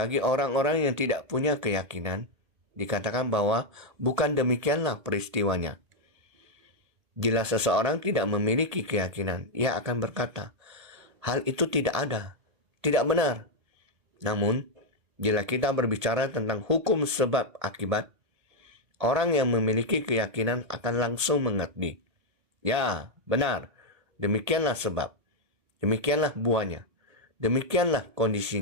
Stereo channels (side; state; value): left; late; 1.8 ms